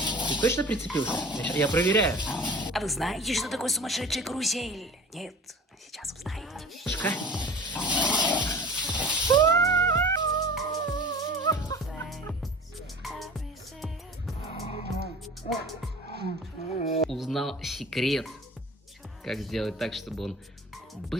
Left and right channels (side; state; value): both; normal; correlation 0.40